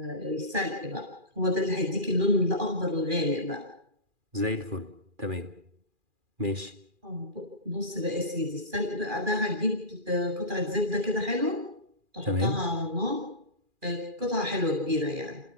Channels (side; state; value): left; late; 2.4 ms